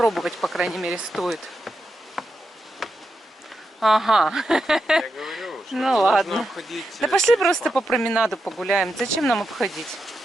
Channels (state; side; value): normal; both; correlation 0.87